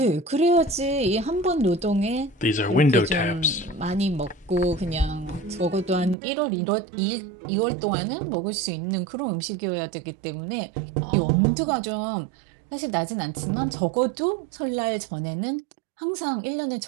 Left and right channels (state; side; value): drops out; left; at 6.2 s